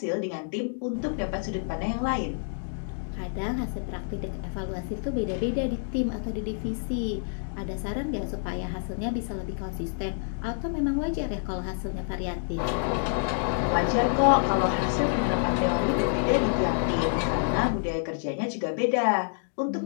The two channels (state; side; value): silent; right; digital silence